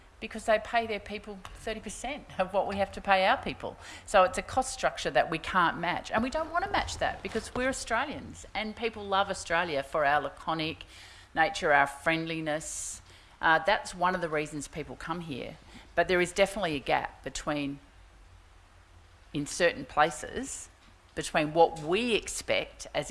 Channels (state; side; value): identical; both; correlation 1.00